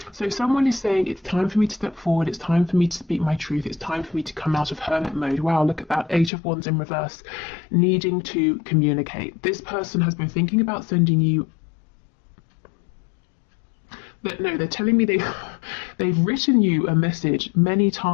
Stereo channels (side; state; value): right; drops out; at 6.3 s